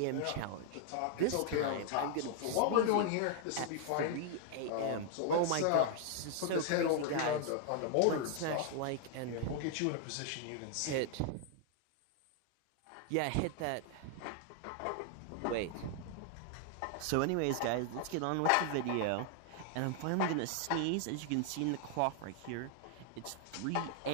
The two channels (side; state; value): both; different; correlation 0.00